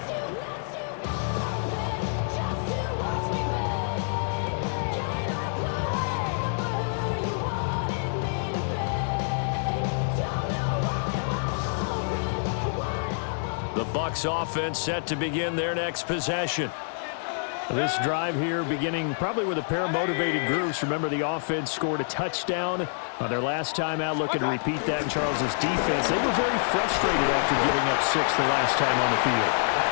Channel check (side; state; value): right; silent; digital silence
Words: The Bucs offense set to begin their next possession. This drive here beginning probably with a pair of motivated groups. Remember, the offense scored a touchdown on their last time out. Looking to repeat that in Charles's defense. They were very frustrated after giving up 6 the last time on the field.